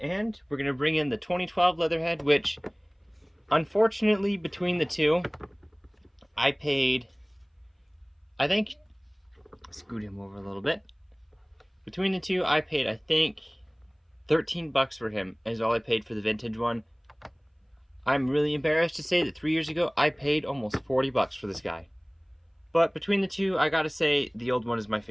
we're going to bring in the 2012 Leatherhead, which, unfortunately, between the two, I paid, I think, scoot him over a little bit. Between the two, I paid, I think, $13 for him, is all I paid for the vintage one. I'm really embarrassed to say that 3 years ago, I paid almost $40 for this guy. But between the two, I gotta say, the old one is my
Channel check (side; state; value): both; identical; correlation 1.00